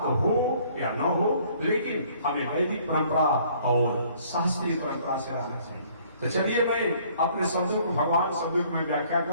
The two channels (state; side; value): inverted; both; correlation -0.59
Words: हो या न हो, लेकिन हमें वैदिक परंपरा और शास्त्रीय परंपरा से रहना चाहिए। तो चलिए, मैं अपने शब्दों को, भगवान शब्दों को मैं व्याख्या कर